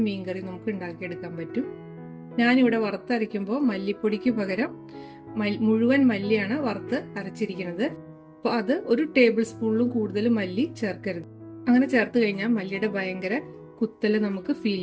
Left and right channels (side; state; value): both; identical; correlation 1.00